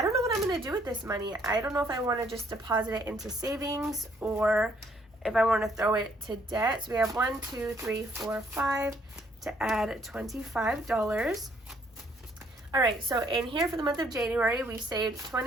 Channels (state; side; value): normal; both; correlation 0.66